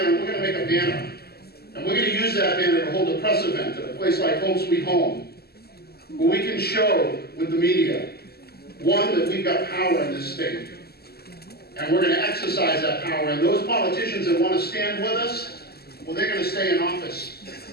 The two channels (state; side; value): late; right; 0.46 ms